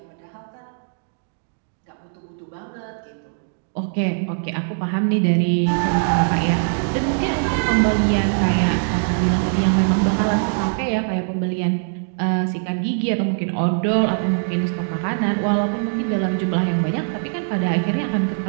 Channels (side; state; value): left; silent; digital silence